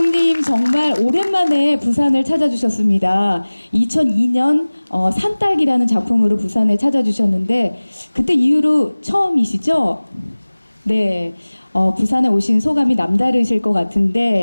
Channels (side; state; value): both; inverted; correlation -1.00